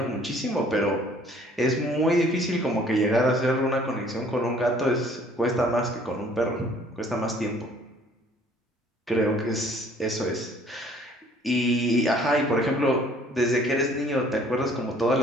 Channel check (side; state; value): both; normal; correlation 0.57